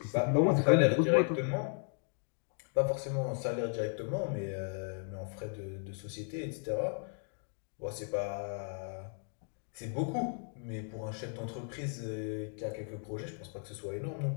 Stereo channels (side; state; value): right; silent; 54 dB below the other